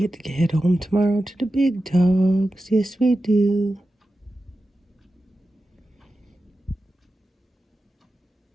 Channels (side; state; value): both; normal; correlation 0.92